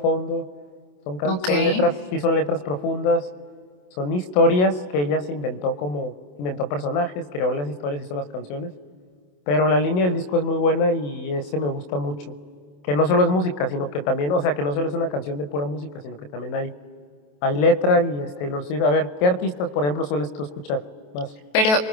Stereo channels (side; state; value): right; late; 27 ms